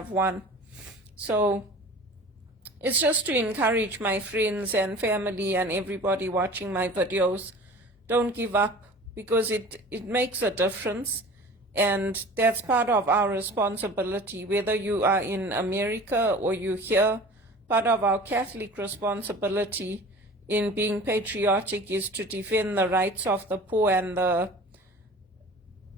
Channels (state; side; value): normal; both; correlation 0.41